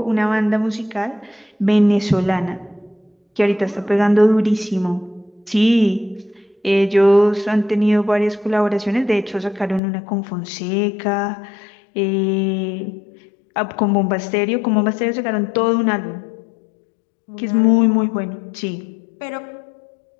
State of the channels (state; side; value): drops out; right; at 9.8 s